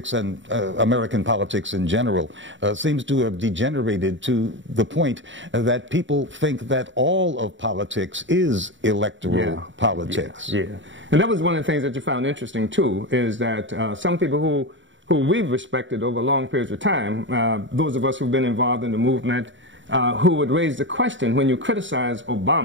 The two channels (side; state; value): left; late; 0.55 ms